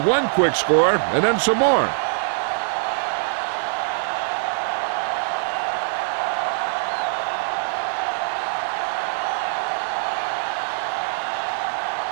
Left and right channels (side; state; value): left; silent; digital silence